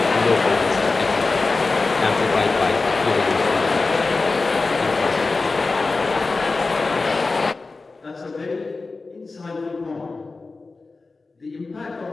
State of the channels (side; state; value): right; quieter; 3.8 dB